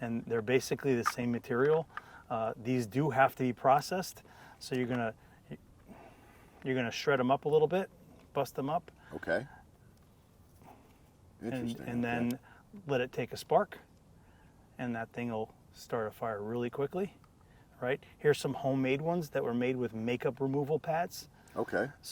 and they're basically the same material. These do have to be processed, so you're gonna shred them up a little bit, bust them up. Okay. Interesting. And then let it take a spark, and that thing will start a fire really quickly, right? Here's some homemade ones that were made with makeup removal pads. Okay.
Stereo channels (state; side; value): identical; both; correlation 1.00